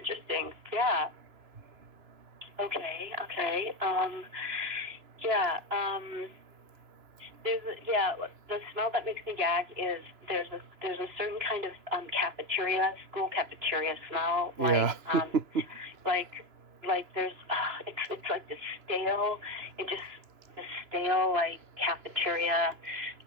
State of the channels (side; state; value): left; late; 2.9 ms